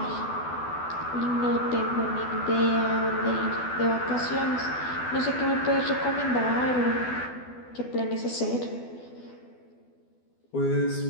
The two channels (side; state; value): right; late; 12 ms